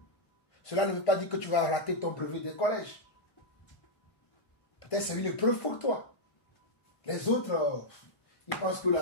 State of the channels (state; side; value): late; right; 1.5 ms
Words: Cela ne veut pas dire que tu vas rater ton brevet de collège. Peut-être c'est une épreuve pour toi. Les autres, ils pensent que